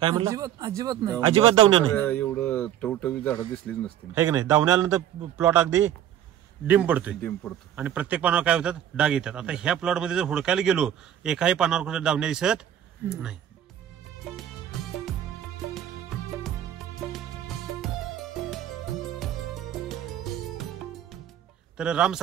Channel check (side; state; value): left; quieter; 10.8 dB